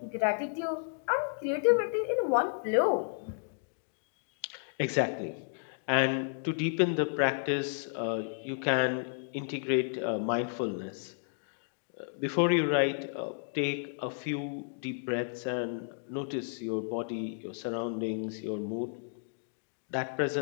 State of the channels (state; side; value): silent; right; digital silence